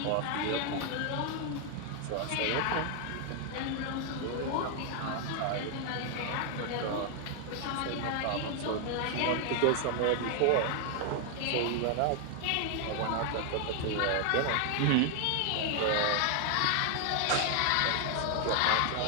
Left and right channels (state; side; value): different; both; correlation 0.00